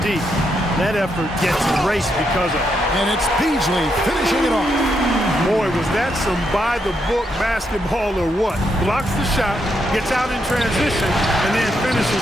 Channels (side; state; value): both; normal; correlation 0.80